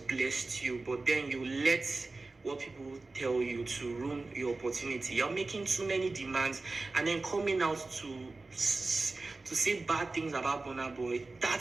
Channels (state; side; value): quieter; left; 3.5 dB